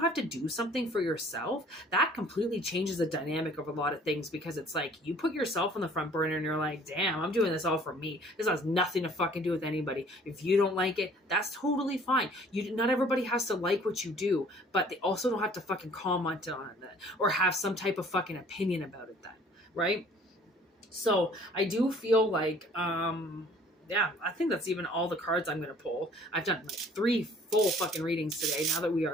to do something for yourself, that completely changes the dynamic of a lot of things, because it's like you put yourself on the front burner and you're like, damn, I'm doing this all for me. This has nothing to fucking do with anybody. If you don't like it, that's totally fine. Not everybody has to like what you do, but they also don't have to fucking comment on it or have some type of fucking opinion about it then, right? So I do feel like yeah, I think that's even all the cards I'm gonna pull. I've done like 3 full fucking readings today now that we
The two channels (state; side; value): normal; both; correlation 0.54